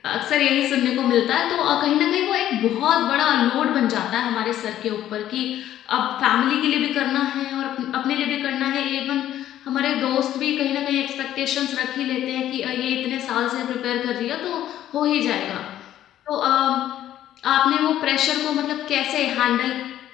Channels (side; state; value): right; quieter; 12.2 dB